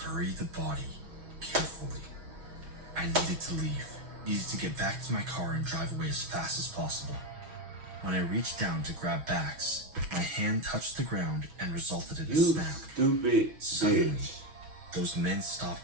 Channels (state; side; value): late; left; 6.2 ms